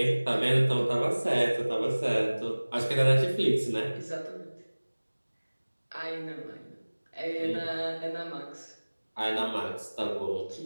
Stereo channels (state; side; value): inverted; both; correlation -1.00